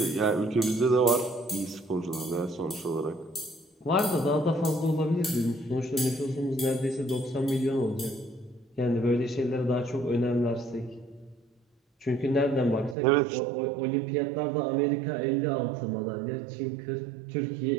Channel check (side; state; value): left; drops out; at 13.0 s